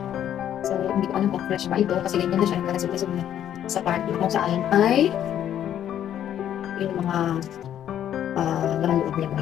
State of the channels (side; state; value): right; quieter; 10.5 dB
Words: So hindi ko alam kung fresh pa ito kasi ganyan na siya. Nakalasog-lasog na sa part kung saan ay yung mga laman loob niya